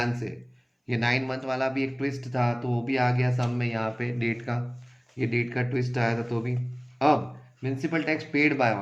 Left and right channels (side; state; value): both; identical; correlation 1.00